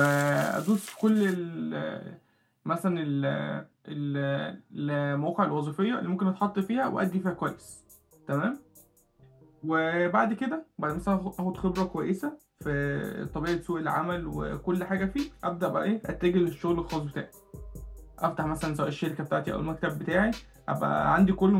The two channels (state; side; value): identical; both; correlation 1.00